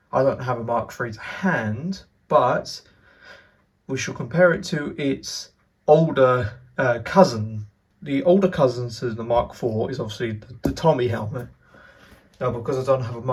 I don't have a Mark III to hand, but we shall compare it to its older cousin. The older cousin to the Mark IV is obviously the Tommy helmet. Now, because I don't have a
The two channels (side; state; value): both; identical; correlation 1.00